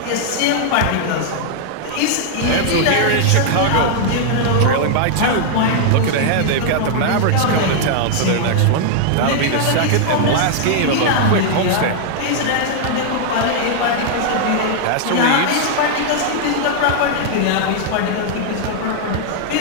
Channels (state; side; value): different; both; correlation -0.01